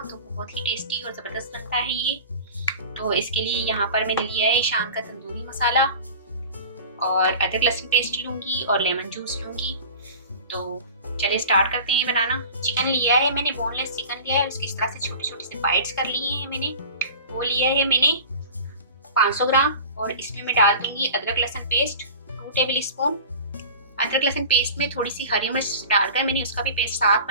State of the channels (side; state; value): both; inverted; correlation -0.38